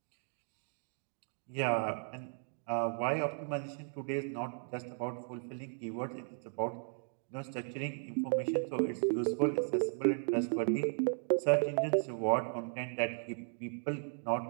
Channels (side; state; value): left; silent; 54 dB below the other